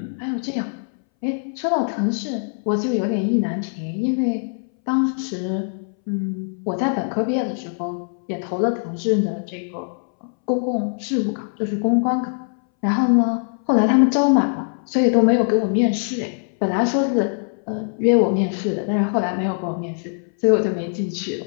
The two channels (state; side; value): silent; right; 63 dB below the other